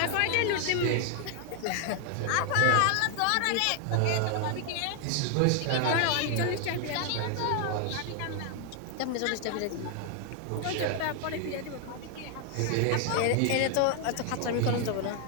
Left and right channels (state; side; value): different; both; correlation 0.00